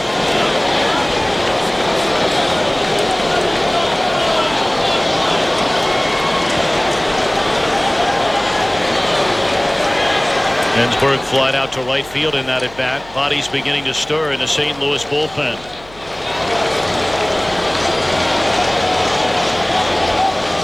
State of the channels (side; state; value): left; noise; hum, 23 dB below the sound